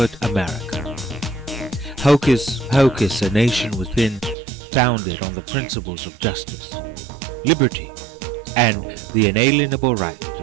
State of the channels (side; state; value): left; drops out; at 4.4 s